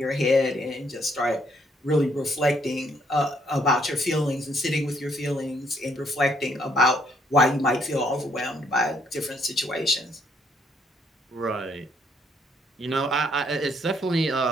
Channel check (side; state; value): both; normal; correlation 0.69